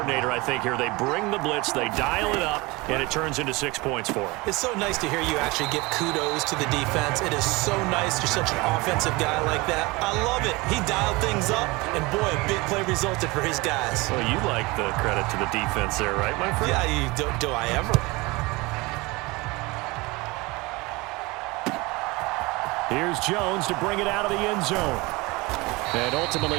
I think, here. They bring the blitz, they dial it up, and it turns into 6 points for them. It's so nice to hear you actually give kudos to the defense. It is so nice you're such an offensive guy like that. I love it. He dialed things up, and boy, a big play resulted for his guys. Well, you like the credit to the defense there, right, my friend? Yeah, do I ever? Here's Jones to bring it out of the end zone. And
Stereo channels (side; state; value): left; quieter; 23.7 dB